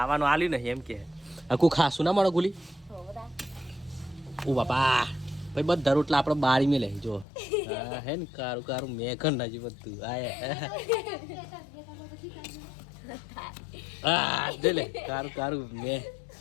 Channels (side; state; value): right; drops out; at 7.2 s